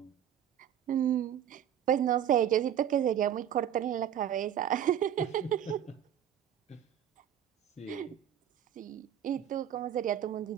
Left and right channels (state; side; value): quieter; left; 10.0 dB